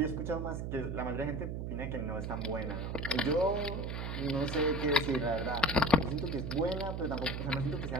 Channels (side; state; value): right; noise; hum, 4 dB below the sound